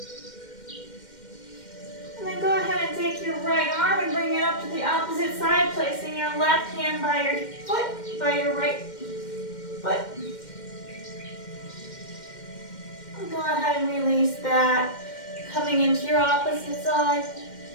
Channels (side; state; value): right; late; 2.1 ms